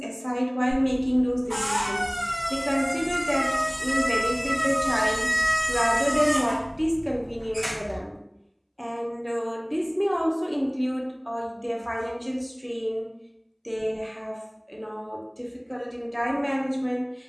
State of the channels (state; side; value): identical; both; correlation 1.00